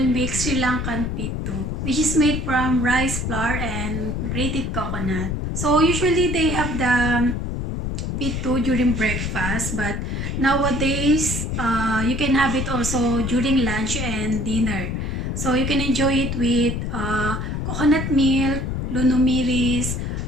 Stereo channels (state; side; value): noise; left; rumble, 2 dB below the sound